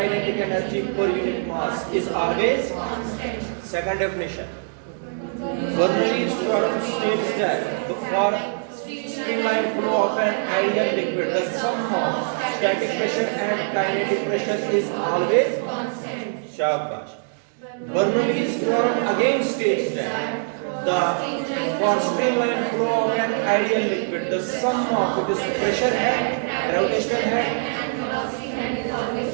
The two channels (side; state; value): left; silent; 63 dB below the other